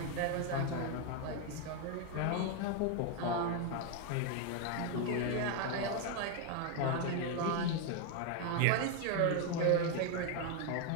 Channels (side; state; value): both; different; correlation 0.01